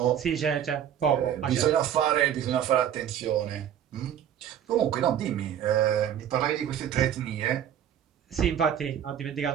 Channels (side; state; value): left; quieter; 9.8 dB